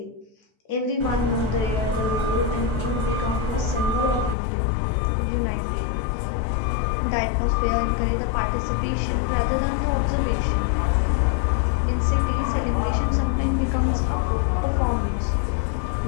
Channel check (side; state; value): right; drops out; at 4.4 s